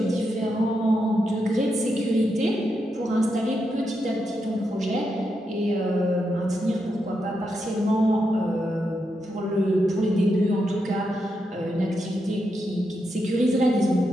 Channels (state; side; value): normal; both; correlation 0.84